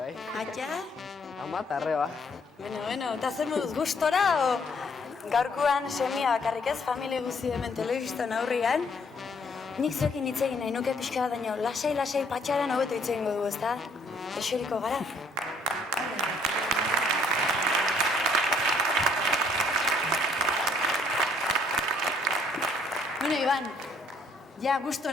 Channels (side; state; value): both; normal; correlation 0.65